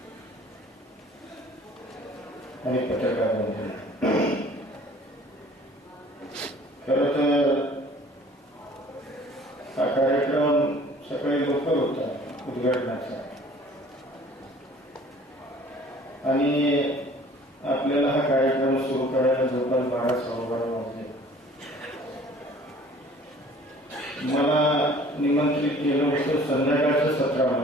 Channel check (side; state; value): both; normal; correlation 0.51